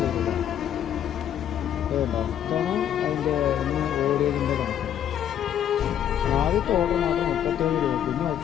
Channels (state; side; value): quieter; right; 10.0 dB